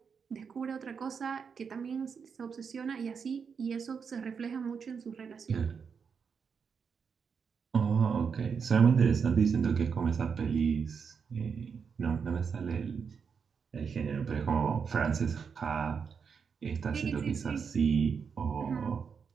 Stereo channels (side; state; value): left; quieter; 6.2 dB